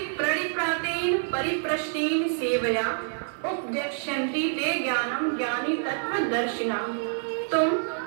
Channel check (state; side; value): silent; left; 60 dB below the other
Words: प्रणिप्रातेन परिप्रश्नेन सेवया उपदेक्ष्यन्ति ते ज्ञानम ज्ञानी तत्वदर्शिना। तुम